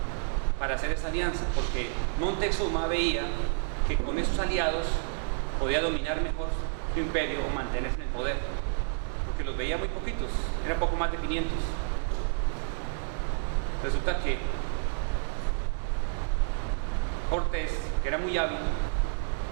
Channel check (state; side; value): silent; left; digital silence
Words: para hacer esa alianza, porque Montezuma veía que con esos aliados podía dominar mejor su imperio o mantenerse en el poder, porque los veía muy poquitos, eran poco más de 500. Resulta que Cortés, que era muy hábil,